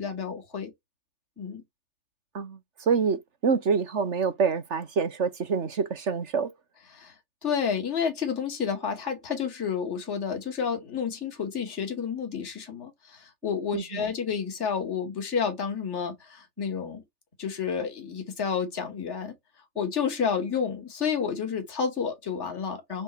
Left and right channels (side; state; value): left; late; 3.4 ms